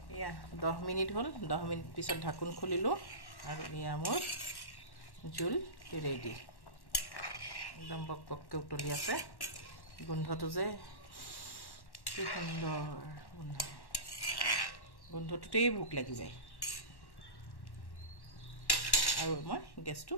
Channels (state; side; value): late; right; 1.1 ms